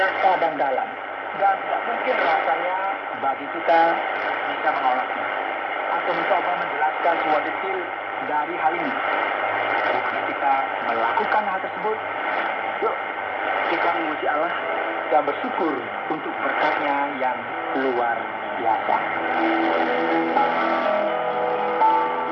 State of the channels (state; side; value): identical; both; correlation 1.00